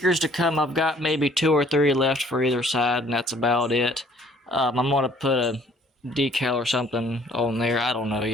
to come. I've got maybe 2 or 3 left for either side, and that's about it. I'm gonna put a decal or something on there. I don't know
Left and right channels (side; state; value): both; normal; correlation 0.58